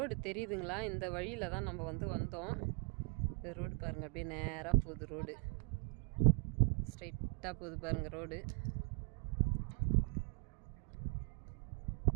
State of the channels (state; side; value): quieter; left; 37.6 dB